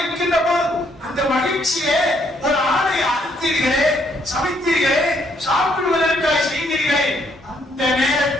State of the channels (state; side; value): normal; both; correlation 0.70